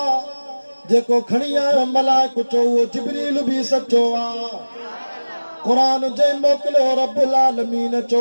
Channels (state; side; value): inverted; both; correlation -1.00